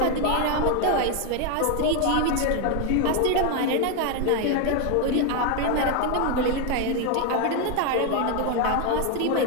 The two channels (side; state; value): both; different; correlation 0.01